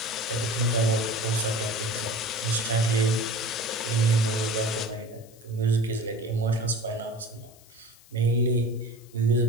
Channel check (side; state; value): left; noise; hiss, 25 dB below the sound